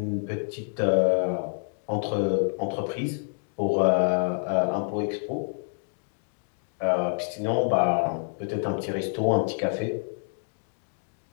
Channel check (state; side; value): silent; right; digital silence